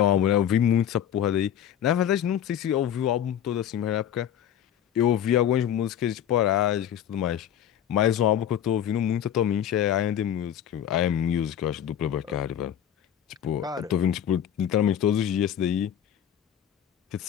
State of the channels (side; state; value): right; quieter; 10.0 dB